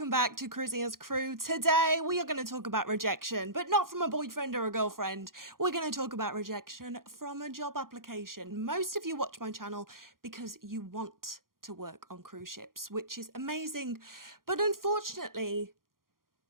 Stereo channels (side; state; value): left; late; 0.91 ms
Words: back to Cruising as Crew. Today we are going to talk about rejection, but not from a boyfriend or a girlfriend. We're going to talk about rejection from a job application. Most of you watch my channel because you want to work on cruise ships, which is amazing, but unfortunately,